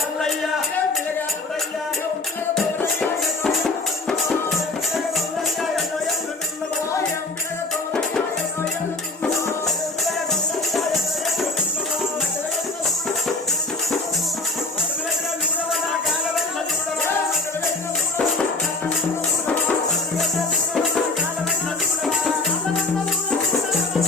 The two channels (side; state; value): right; quieter; 3.2 dB